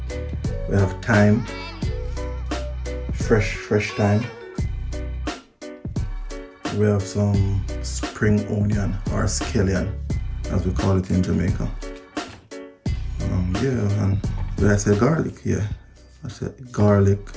We have thyme, fresh thyme. We have some spring onion or scallion, as we call it in Jamaica. Yeah, and did I say garlic? Yeah, I said garlic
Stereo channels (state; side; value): identical; both; correlation 1.00